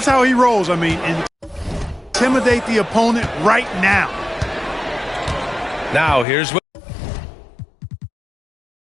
how he rolls. I mean, intimidate the opponent right now. Now here's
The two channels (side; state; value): right; drops out; at 6.2 s